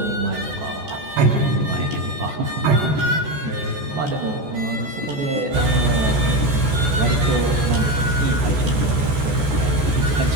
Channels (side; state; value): left; late; 14 ms